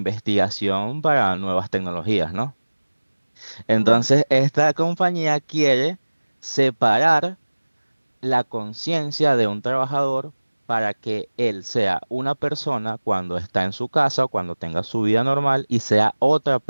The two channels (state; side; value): inverted; both; correlation -1.00